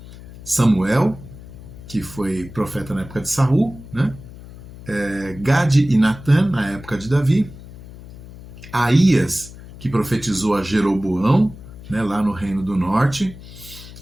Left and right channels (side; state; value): left; noise; hum, 16 dB below the sound